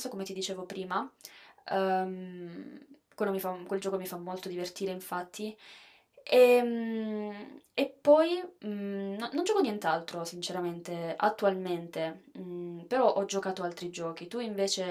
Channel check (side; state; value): both; identical; correlation 1.00